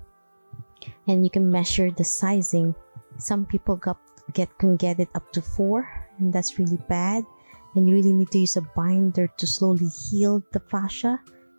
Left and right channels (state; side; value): inverted; both; correlation -1.00